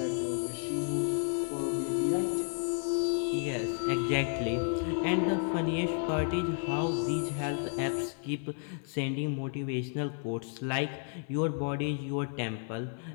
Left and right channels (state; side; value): silent; right; 56 dB below the other